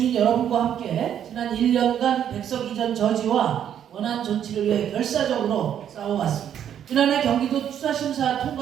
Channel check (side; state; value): left; quieter; 9.6 dB